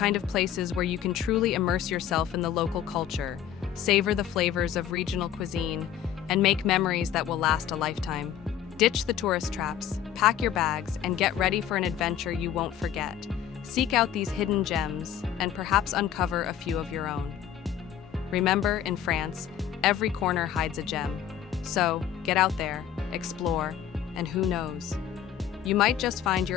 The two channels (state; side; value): quieter; right; 9.9 dB